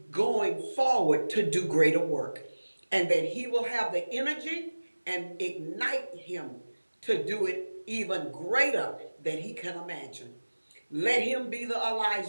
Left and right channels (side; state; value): both; inverted; correlation -1.00